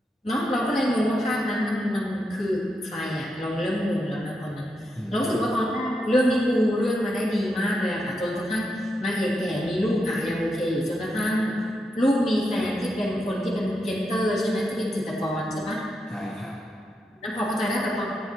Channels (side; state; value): both; normal; correlation 0.84